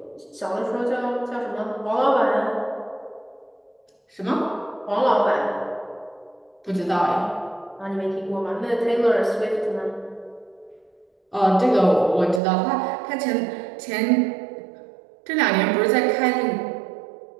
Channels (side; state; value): left; drops out; at 12.4 s